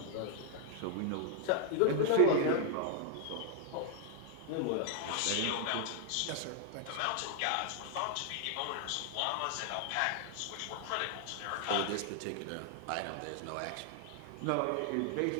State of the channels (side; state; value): both; different; correlation 0.00